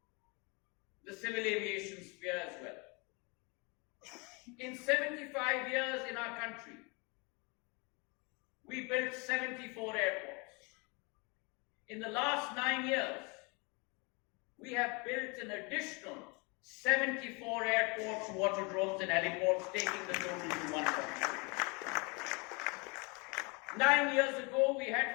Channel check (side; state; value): right; quieter; 30.3 dB